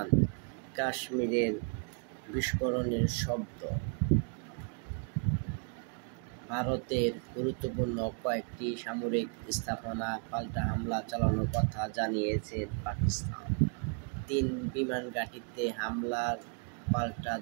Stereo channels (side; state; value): left; quieter; 39.8 dB